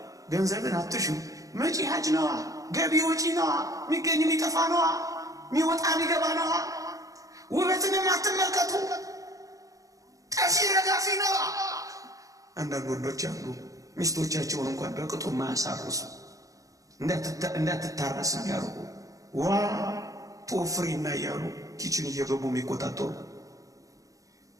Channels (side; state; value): left; late; 0.16 ms